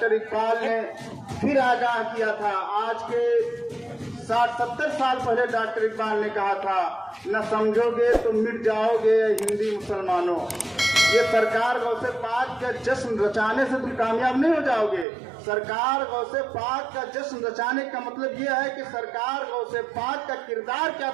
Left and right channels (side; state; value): left; drops out; at 15.1 s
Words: इकबाल ने फिर आगाह किया था। आज के 60-70 साल पहले डॉक्टर इकबाल ने कहा था, न समझोगे तो मिट जाओगे हिंदी मुसलमानों। ये सरकार गौसे पाक का जश्न रचाने से तुम कामयाब नहीं हो जाओगे। सरकार गौसे पाक का जश्न रचाने का मतलब ये है कि सरकार गौसे पाक का किरदार क्या